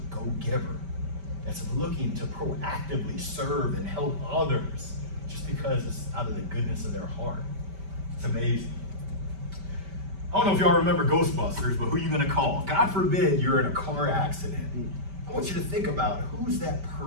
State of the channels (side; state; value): left; late; 5.1 ms